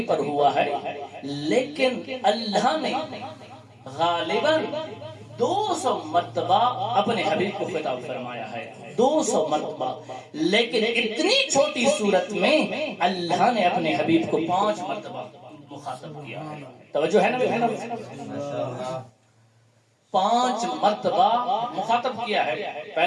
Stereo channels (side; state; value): both; identical; correlation 1.00